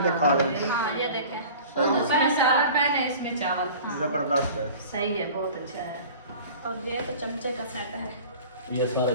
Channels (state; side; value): inverted; both; correlation -0.42